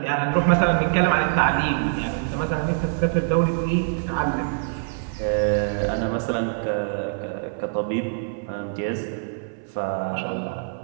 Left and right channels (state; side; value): silent; left; 58 dB below the other